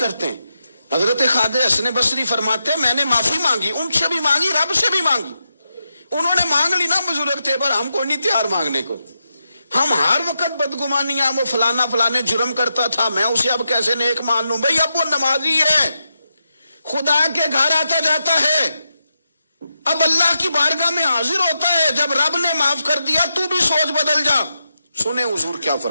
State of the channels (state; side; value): inverted; both; correlation -0.86